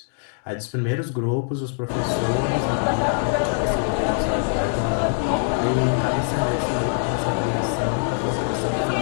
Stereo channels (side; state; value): right; silent; digital silence